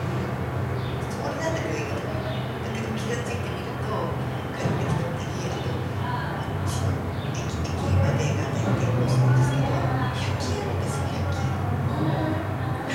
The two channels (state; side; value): identical; both; correlation 1.00